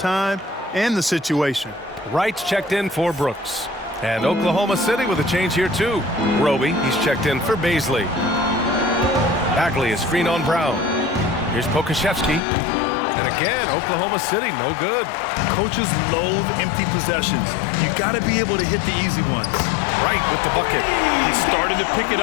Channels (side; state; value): right; drops out; at 12.4 s